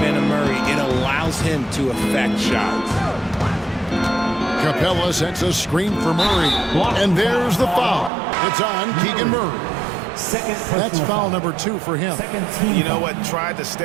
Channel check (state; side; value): drops out; left; at 8.1 s